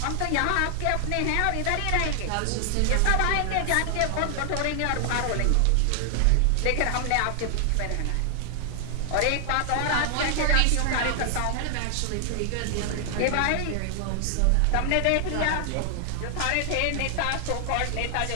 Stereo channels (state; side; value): different; both; correlation 0.00